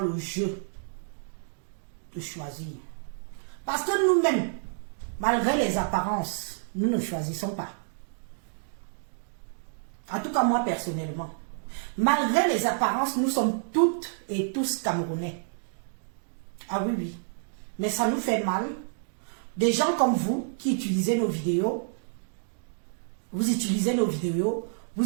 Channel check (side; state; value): left; silent; digital silence